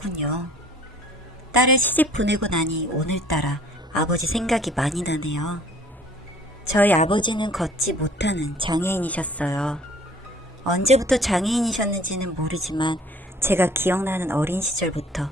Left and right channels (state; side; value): normal; both; correlation 0.53